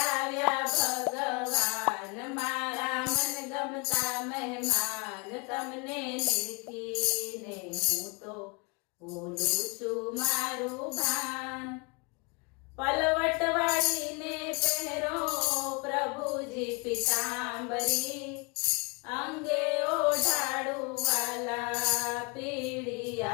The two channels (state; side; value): quieter; right; 30.2 dB